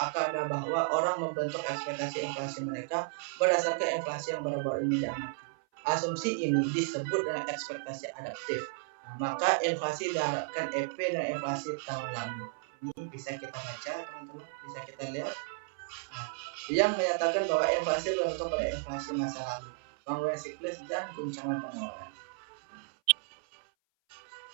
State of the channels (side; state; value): left; silent; 55 dB below the other